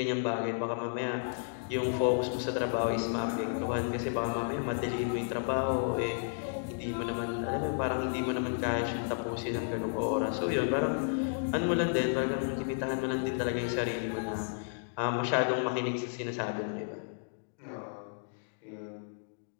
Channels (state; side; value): silent; right; digital silence